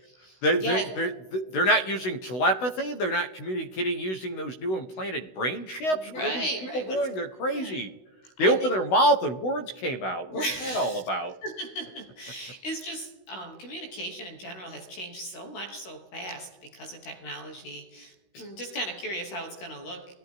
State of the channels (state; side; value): late; right; 16 ms